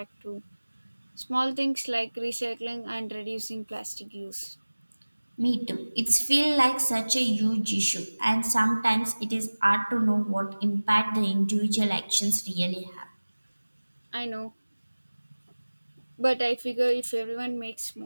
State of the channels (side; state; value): both; inverted; correlation -1.00